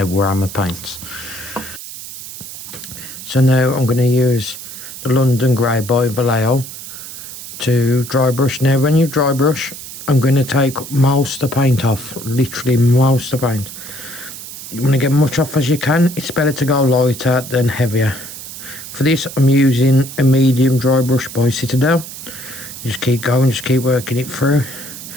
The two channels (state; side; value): noise; right; hiss, 12 dB below the sound